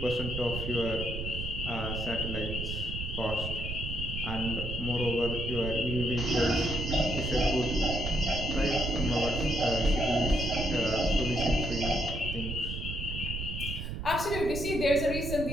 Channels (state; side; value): noise; right; rumble, 5 dB below the sound